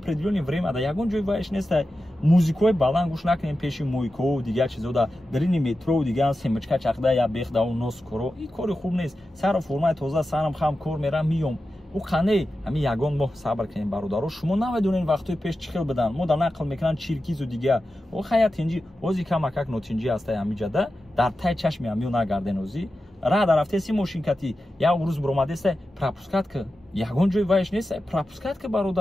время да ягон ҷои вайш нестай музикои баланд гӯш накунем пеши мойкоу дигар чизода дарини метро дигар семочка чахда я бехдау нос коро ин кори хуб нест сару формаи тоза сарам хам кор мерам миём у қане ҳами ягон моҳ сабр кунем бародаро шумо намедонем вақтои пеш чӣ хел бидан мо дар нақл мекунанд чиркизу дигар о хая тинҷи ози камакак нотинҷи ҳастай ҳамиҷада дар тай чашми ҳамиё нагарден ози рада рафтеси мошинкати як рӯз биромадестай пропускатка ягон ҷои вайш нестай пропускатка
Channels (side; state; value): both; normal; correlation 0.92